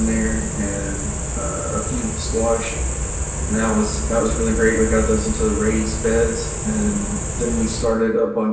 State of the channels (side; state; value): both; identical; correlation 1.00